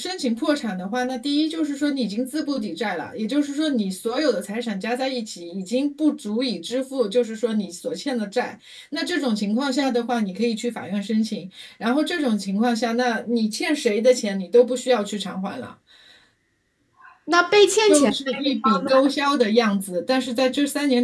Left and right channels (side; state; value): both; identical; correlation 1.00